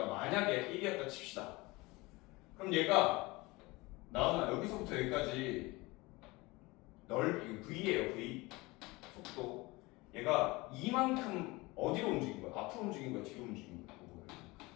만약에 1이었다 칩시다. 그럼 얘가 나오나 여기서부터 여기까지 넓이 V예요. V 속도. 얘가 이만큼 어디로 움직인 거야? 앞으로 움직인 거야? 뒤로 움직인 거야?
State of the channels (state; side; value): quieter; right; 22.9 dB